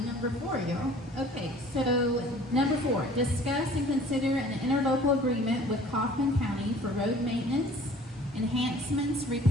Number 4, y'all. Okay, so number 4, discuss and consider an interlocal agreement with Kaufman County for road maintenance, enhancements,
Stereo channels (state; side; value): normal; both; correlation 0.50